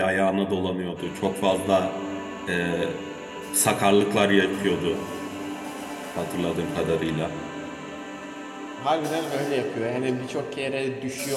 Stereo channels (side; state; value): both; identical; correlation 1.00